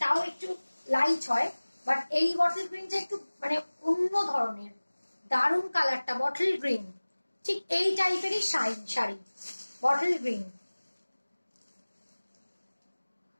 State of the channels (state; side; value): inverted; both; correlation -1.00